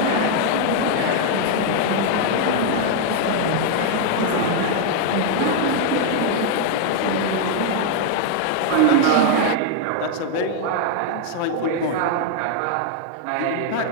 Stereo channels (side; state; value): both; different; correlation 0.00